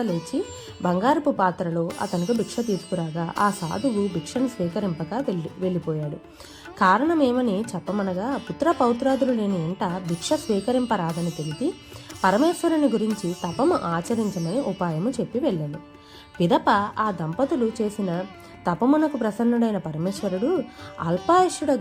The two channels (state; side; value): identical; both; correlation 1.00